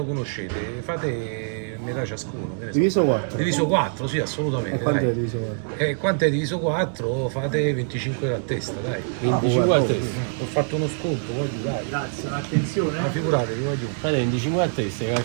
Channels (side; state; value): left; silent; digital silence